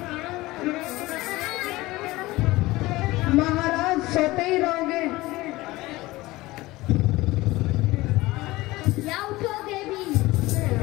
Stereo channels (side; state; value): right; quieter; 19.5 dB